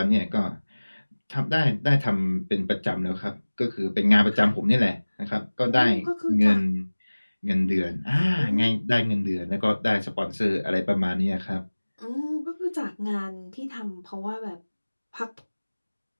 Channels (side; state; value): both; inverted; correlation -1.00